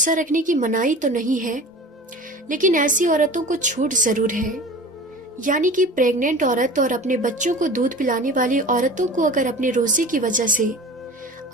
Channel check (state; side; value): normal; both; correlation 0.38